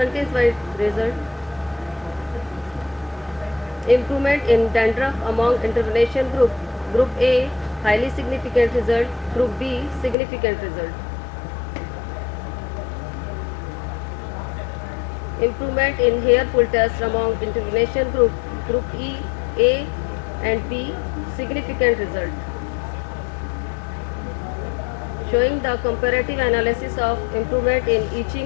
wise result. Improvement in dandruff among intervention group. Group A, highly significant result. Group B, significant result. Improvement in hair pull test among intervention group. Group E, A and B, significant result. Showing the comparative analysis of improvement in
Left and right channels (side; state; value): right; drops out; at 10.2 s